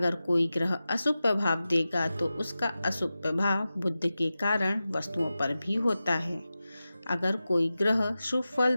कोई ग्रह अशुभ प्रभाव देगा तो उसका अशुभ प्रभाव बुध के कारण वस्तुओं पर भी होता है। अगर कोई ग्रह शुभ फल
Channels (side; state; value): both; inverted; correlation -0.94